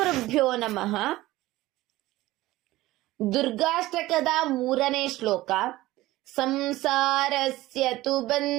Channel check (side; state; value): left; quieter; 17.5 dB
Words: ನಮಃ. ದುರ್ಗಾಷ್ಟಕದ 3ನೇ ಶ್ಲೋಕ. ಸಂಸಾರಸ್ಯ ತು